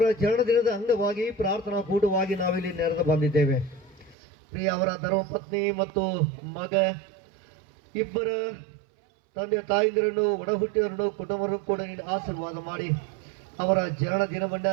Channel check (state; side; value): drops out; left; at 4.2 s